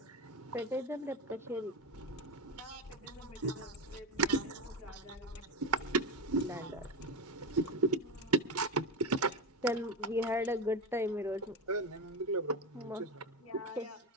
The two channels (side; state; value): both; normal; correlation 0.17